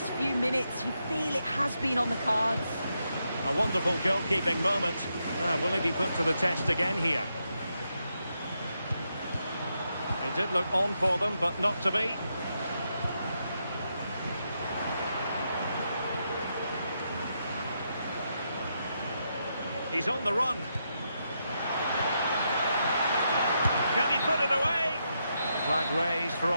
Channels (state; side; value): inverted; both; correlation -0.82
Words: few minutes, you feel it has been on the cards. A wonderful goalkeeping moment. Will he be put to the test again here? He did look on for them, but not to be. He's on the run. Can he put it away? Flag raised for